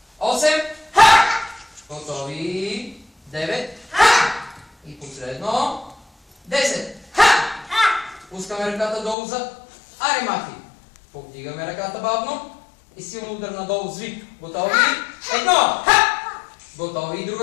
8. Готови. 9. И последно. 10. Пускаме ръката долу за аримахи. Повдигаме ръката бавно. И силно удар надолу с вик. Готови? 1. Готови.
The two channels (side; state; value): right; drops out; at 9.2 s